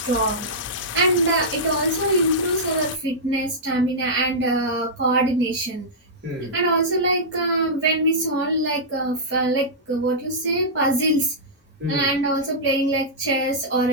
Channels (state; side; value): normal; both; correlation -0.12